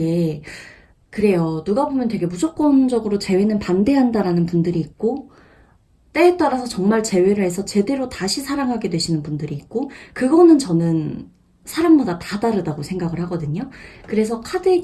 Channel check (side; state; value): both; identical; correlation 1.00